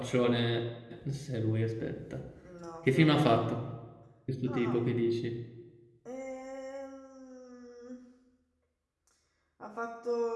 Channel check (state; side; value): identical; both; correlation 1.00